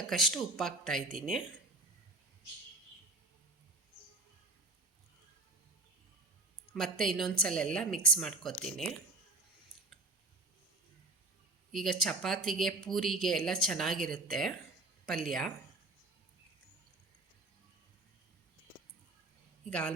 ಉಪ್ಪು ಹಾಕ್ತಾ ಇದ್ದೀನಿ. ಮತ್ತು ಇನ್ನೊಂದು ಸಲ ಎಲ್ಲ ಮಿಕ್ಸ್ ಮಾಡ್ಕೊತೀನಿ. ಈಗ ಚಪಾತಿಗೆ, ಪೂರಿಗೆ ಎಲ್ಲ ಚೆನ್ನಾಗಿರುತ್ತೆ ಪಲ್ಯ. ಈಗ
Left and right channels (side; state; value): left; quieter; 3.0 dB